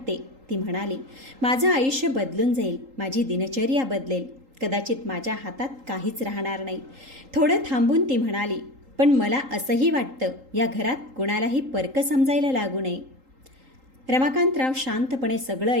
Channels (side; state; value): left; late; 3.8 ms